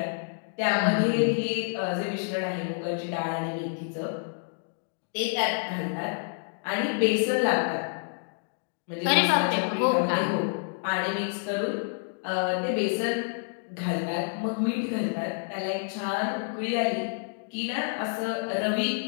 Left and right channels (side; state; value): right; silent; digital silence